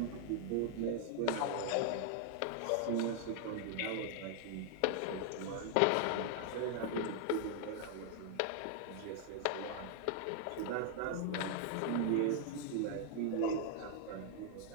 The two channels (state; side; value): different; both; correlation 0.00